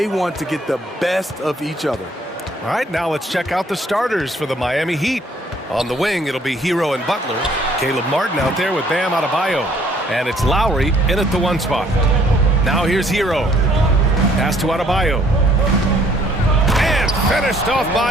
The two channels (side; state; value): both; normal; correlation 0.62